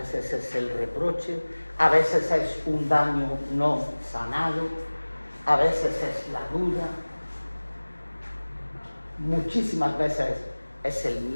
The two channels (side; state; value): both; inverted; correlation -1.00